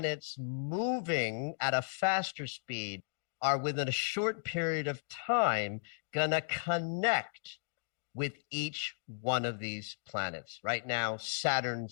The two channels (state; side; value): silent; right; digital silence